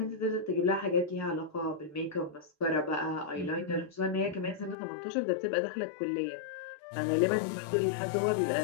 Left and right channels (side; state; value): right; drops out; at 4.8 s